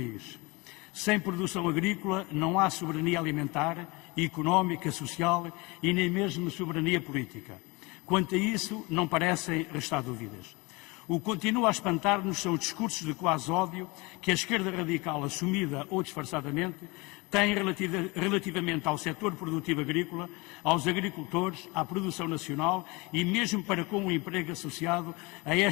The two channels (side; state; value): right; quieter; 25.0 dB